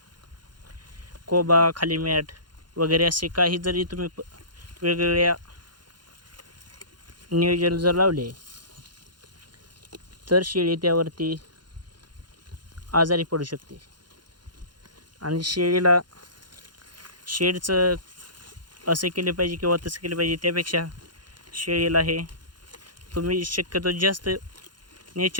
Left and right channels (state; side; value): late; left; 0.71 ms